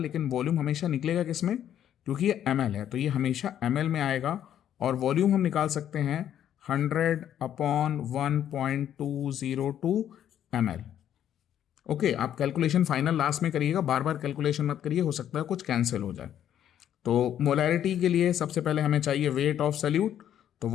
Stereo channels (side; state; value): right; quieter; 10.4 dB